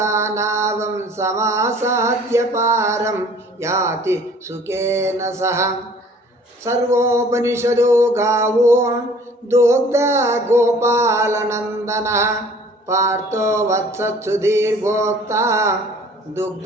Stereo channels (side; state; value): both; normal; correlation 0.52